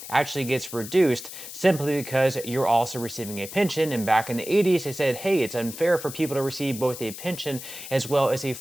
actually gets reduced simply because you're also receiving a pension. And back in the 80s, they said, hey, it's unfair for people to receive both a pension as well as a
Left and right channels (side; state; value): left; noise; hiss, 11 dB below the sound